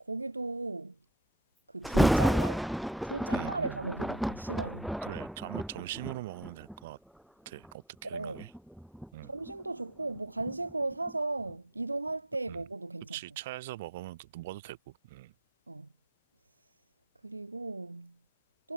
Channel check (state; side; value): normal; both; correlation 0.32